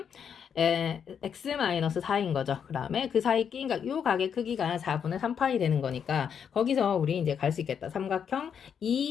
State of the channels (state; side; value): quieter; right; 7.6 dB